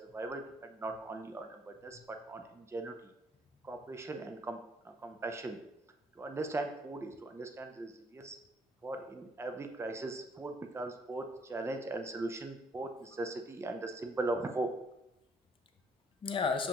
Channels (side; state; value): both; normal; correlation 0.64